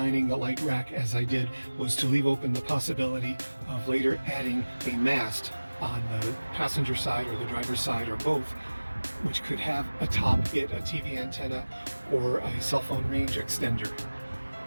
the light rack as I did was to leave open the possibility of later adding a mast on the passenger side or the driver's side or both, which could have atop it a TV antenna or a cell phone range extender.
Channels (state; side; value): inverted; both; correlation -1.00